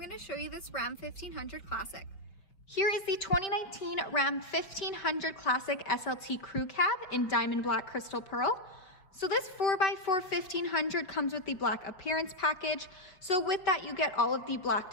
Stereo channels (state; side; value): late; right; 5.1 ms